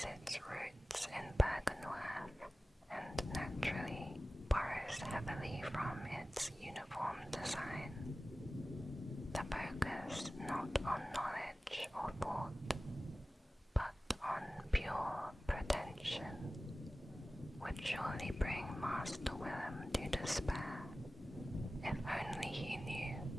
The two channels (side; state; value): both; normal; correlation 0.96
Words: its roots in Byrgenwerth and naturally borrows heavily from its uniform design. The focus not on knowledge or thought, but on pure pretension, would surely bring Master Willem to despair, if only he knew."